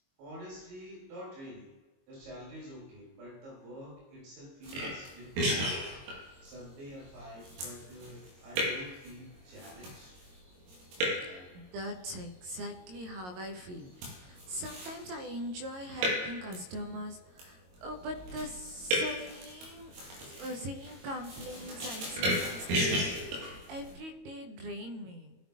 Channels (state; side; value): late; left; 22 ms